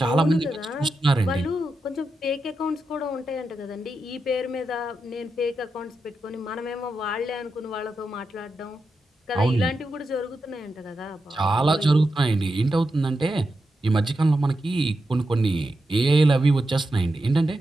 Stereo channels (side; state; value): both; normal; correlation 0.88